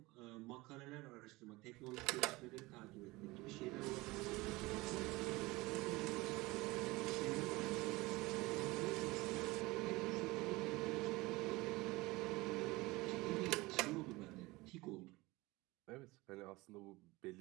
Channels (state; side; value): quieter; left; 21.6 dB